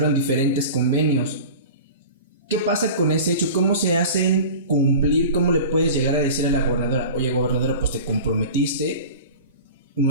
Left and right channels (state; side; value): inverted; both; correlation -0.35